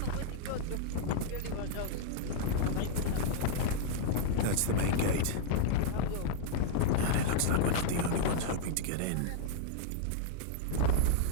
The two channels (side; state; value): both; different; correlation -0.01